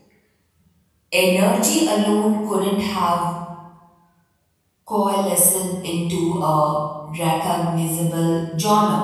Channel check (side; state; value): both; identical; correlation 1.00